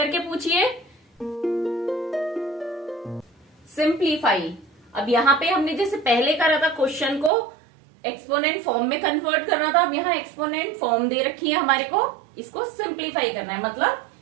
पूछिए। सिंप्लीफाई, अब यहाँ पे हमने जैसे पहले करा था क्वेश्चन को एक्सपोनेंट फॉर्म में कन्वर्ट करना था, अब यहाँ एक्सपोनेंट फॉर्म दे रखी है हमारे को, इसको सिंप्लीफाई करना है, मतलब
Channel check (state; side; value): drops out; left; at 7.3 s